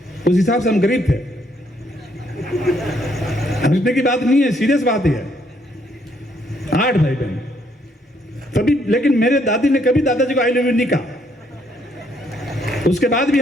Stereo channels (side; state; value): both; normal; correlation 0.70